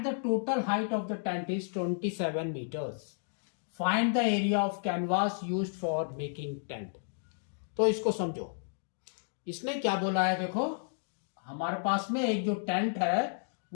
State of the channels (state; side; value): silent; right; digital silence